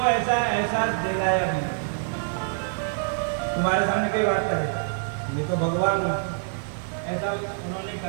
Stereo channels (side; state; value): left; silent; digital silence